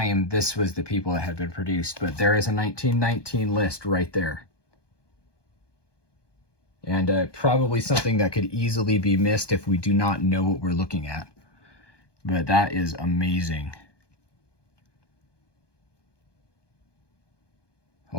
this was the people that had been produced. But there is a 1919 list right there. And probably something that could easily be missed if we do not know what we're looking at. But that is amazing.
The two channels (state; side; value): late; right; 1.2 ms